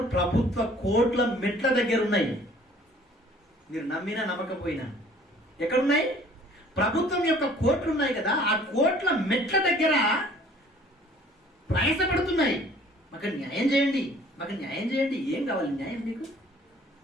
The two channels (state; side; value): normal; both; correlation 0.54